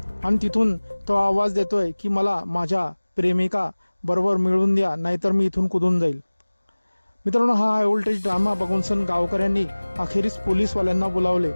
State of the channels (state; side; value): inverted; both; correlation -1.00